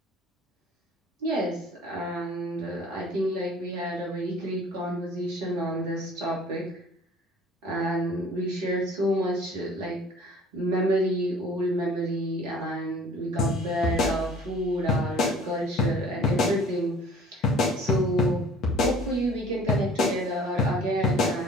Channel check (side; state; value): both; normal; correlation 0.50